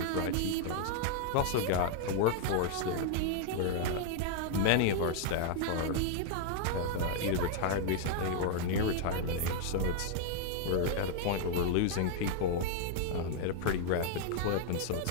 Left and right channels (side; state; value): both; different; correlation 0.00